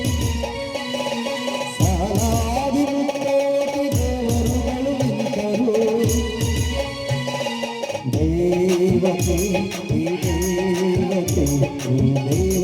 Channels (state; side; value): identical; both; correlation 1.00